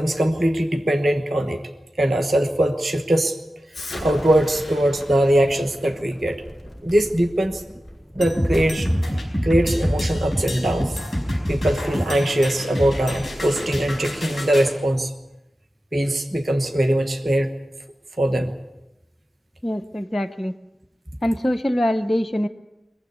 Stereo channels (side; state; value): both; normal; correlation 0.93